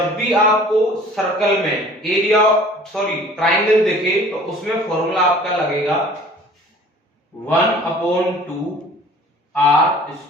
भी आपको सर्कल में एरिया ट्राइंगल दिखे तो उसमें फॉर्मूला आपका लगेगा 1/2 आर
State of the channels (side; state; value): both; normal; correlation 0.49